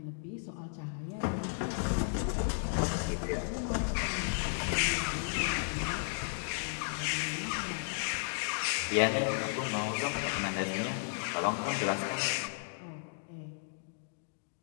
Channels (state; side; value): silent; right; digital silence